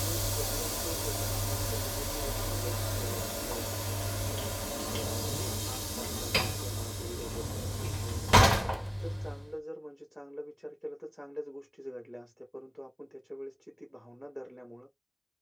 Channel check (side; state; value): both; identical; correlation 1.00